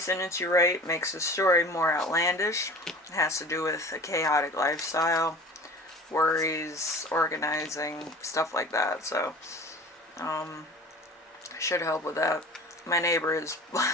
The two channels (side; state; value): both; normal; correlation 0.40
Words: you write makes the story more outlandish. It has to do with a chaotic lifestyle, worries, organizing, stuff like that. So, should help with that. My neighbor is